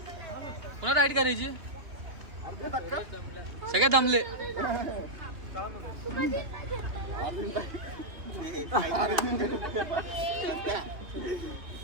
कोणा राईड करायची सगळे दमले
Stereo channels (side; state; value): left; late; 2.8 ms